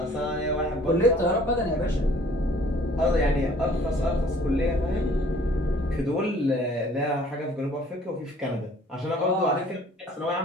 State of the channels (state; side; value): normal; both; correlation 0.55